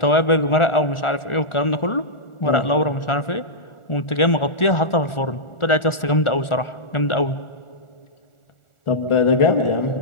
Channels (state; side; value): late; right; 1.4 ms